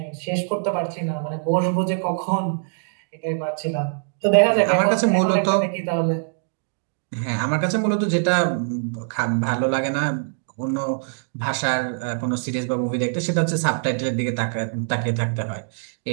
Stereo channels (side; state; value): left; silent; digital silence